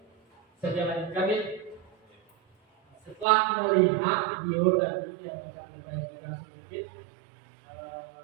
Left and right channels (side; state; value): left; drops out; at 3.2 s